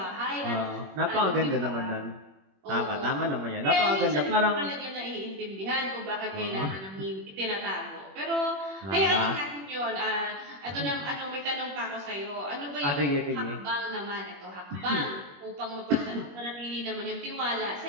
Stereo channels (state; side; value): late; left; 21 ms